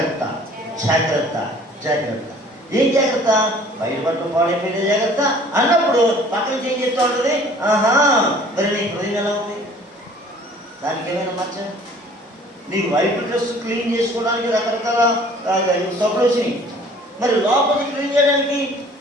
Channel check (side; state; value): both; normal; correlation 0.52